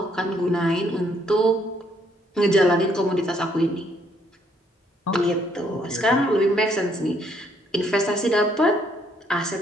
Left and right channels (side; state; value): both; normal; correlation 0.69